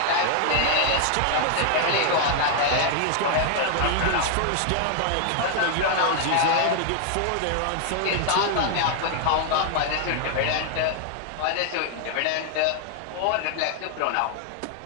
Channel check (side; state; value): both; different; correlation 0.00